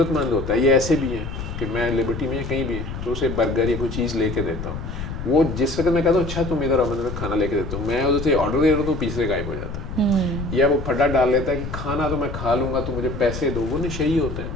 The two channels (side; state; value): left; noise; rumble, 7 dB below the sound